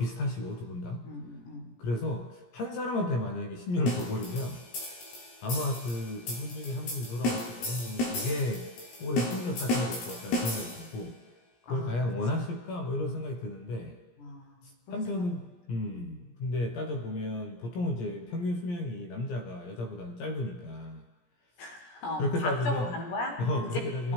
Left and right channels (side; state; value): right; late; 17 ms